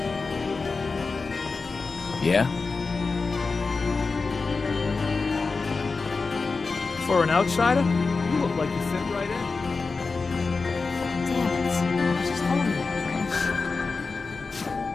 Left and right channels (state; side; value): quieter; right; 4.2 dB